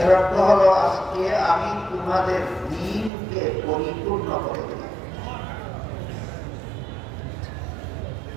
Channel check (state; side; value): drops out; left; at 3.1 s